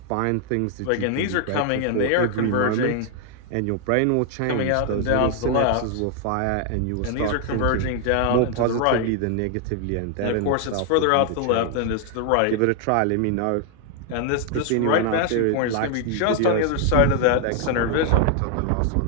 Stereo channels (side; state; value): both; different; correlation 0.00